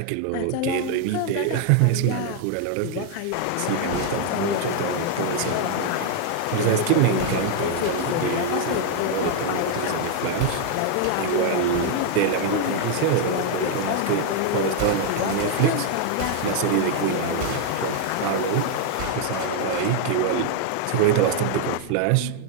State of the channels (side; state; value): both; different; correlation 0.00